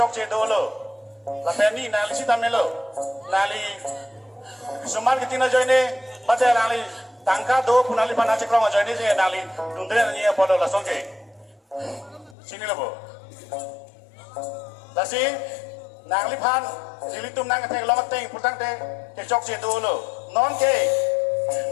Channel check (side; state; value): right; drops out; at 12.4 s